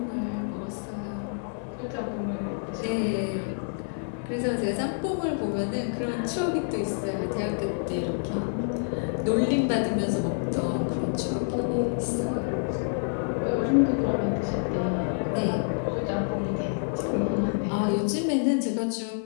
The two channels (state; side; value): silent; right; 60 dB below the other